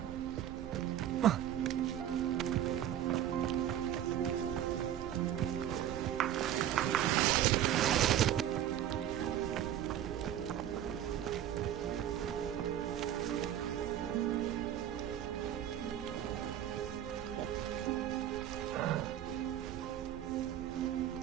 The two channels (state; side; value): quieter; left; 11.1 dB